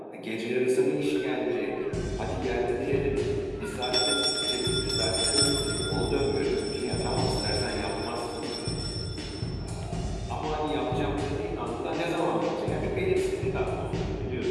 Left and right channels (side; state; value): both; identical; correlation 1.00